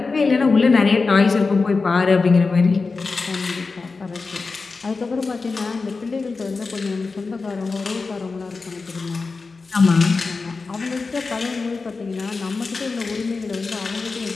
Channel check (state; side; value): quieter; right; 4.2 dB